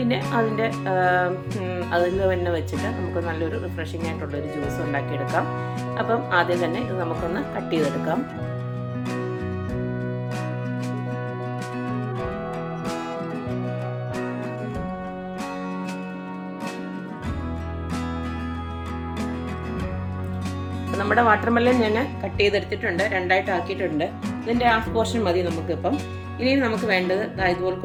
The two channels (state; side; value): identical; both; correlation 1.00